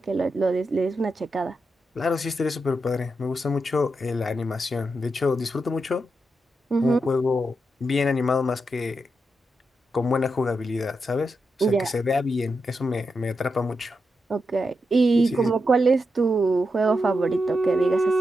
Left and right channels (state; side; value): normal; both; correlation 0.86